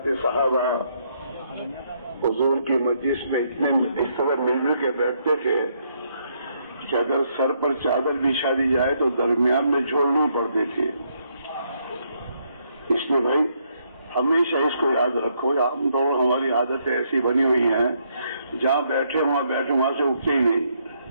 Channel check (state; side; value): inverted; both; correlation -0.73